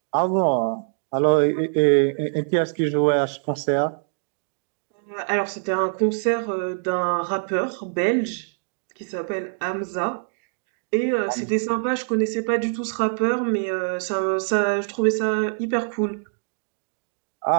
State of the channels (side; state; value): left; silent; digital silence